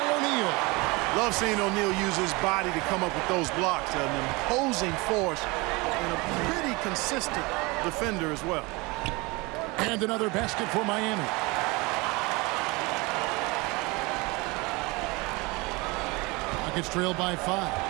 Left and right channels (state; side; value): quieter; left; 25.1 dB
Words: O'Neal. Love seeing O'Neal use his body to come up with those blocks. An imposing force and a pretty consistent defender as well. And another basket for Miami. Rockets trailed by 5.